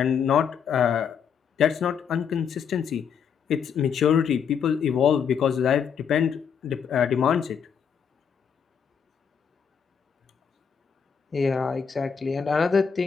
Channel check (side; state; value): right; quieter; 7.1 dB